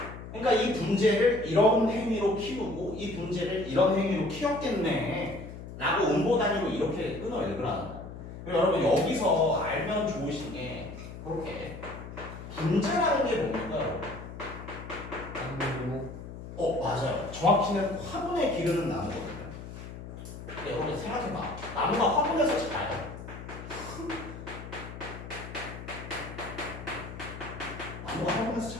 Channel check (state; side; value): noise; left; hum, 11 dB below the sound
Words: 그러니까 이 분재를 이런 행위로 키우고 이 분재를 이런 행위로 키웠겠네 라고 음보 단위로 이렇게 끊어 읽으라는 거예요. 그리고 여러분 여기서 알면 좋으신 게 그렇게 분재라는 게 뭡니까? 맞아요. 정확히는 화분에 기르는 나무거든요. 근데 여러분 생각해봐. 나무가 화분에서 자라요. 나무가 화분에서